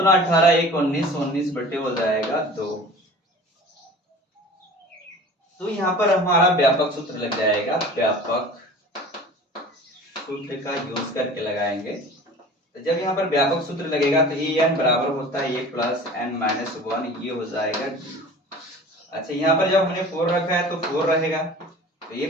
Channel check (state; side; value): normal; both; correlation 0.41